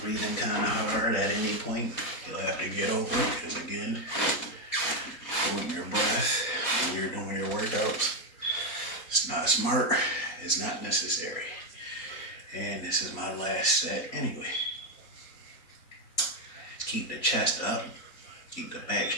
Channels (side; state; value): right; late; 3.9 ms